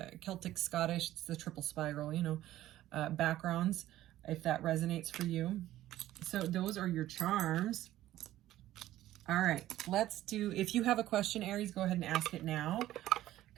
Scottish. It's the triple spiral, you know, backgrounds, if that resonates for you. So those are your charms. All right, let's do, if you have a question, Aries, go ahead and ask it now.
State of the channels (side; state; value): left; quieter; 14.2 dB